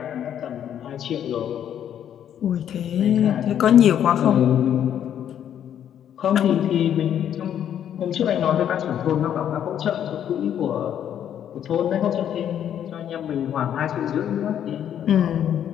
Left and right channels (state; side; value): quieter; right; 9.8 dB